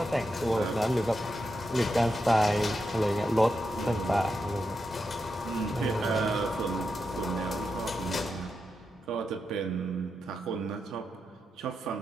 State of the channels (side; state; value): both; normal; correlation 0.86